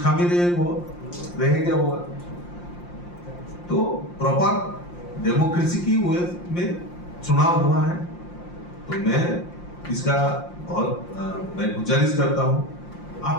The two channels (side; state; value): right; late; 5.7 ms